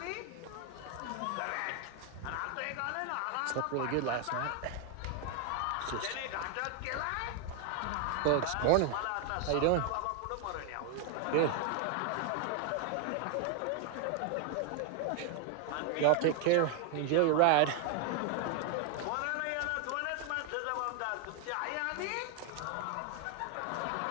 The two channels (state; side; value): different; both; correlation 0.00